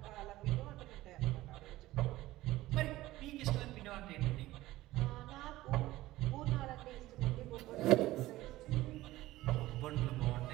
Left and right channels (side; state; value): left; quieter; 16.8 dB